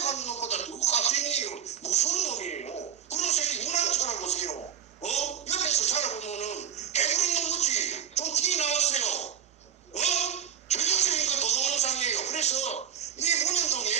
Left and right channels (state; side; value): quieter; left; 8.9 dB